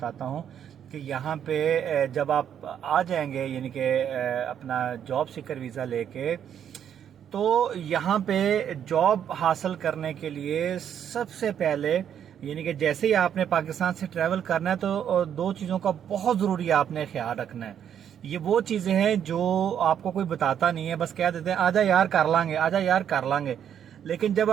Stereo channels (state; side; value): quieter; left; 9.1 dB